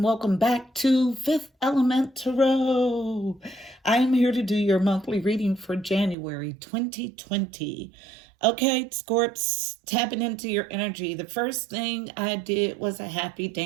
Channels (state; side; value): drops out; left; at 6.2 s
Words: back to Fifth Element Tarot. I am here to do your monthly reading for January 2020. Okay, Scorps, tapping into your energy. The first thing I did was a happy